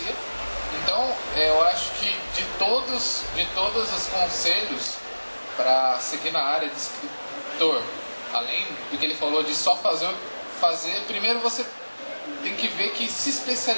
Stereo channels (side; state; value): both; inverted; correlation -1.00